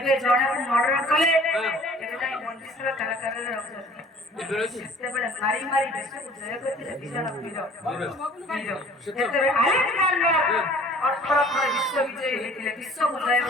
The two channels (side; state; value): both; normal; correlation 0.51